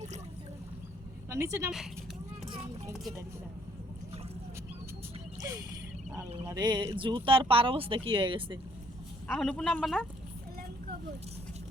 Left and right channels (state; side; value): normal; both; correlation 0.64